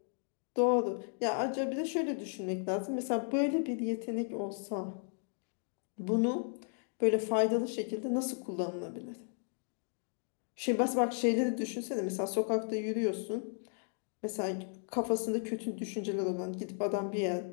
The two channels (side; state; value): right; silent; 54 dB below the other